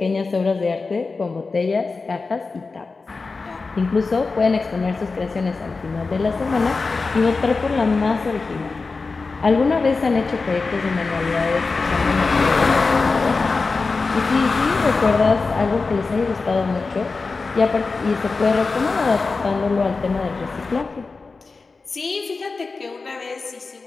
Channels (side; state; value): right; quieter; 4.1 dB